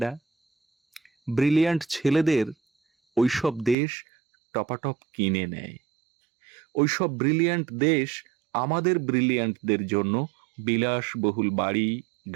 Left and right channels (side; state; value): left; drops out; at 3.8 s